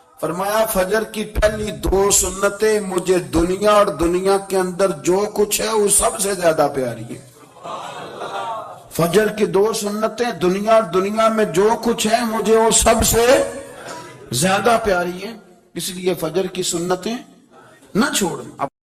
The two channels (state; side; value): identical; both; correlation 1.00